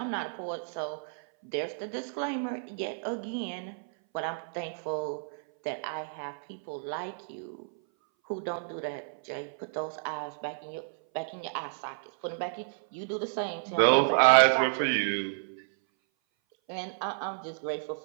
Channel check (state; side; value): silent; left; 57 dB below the other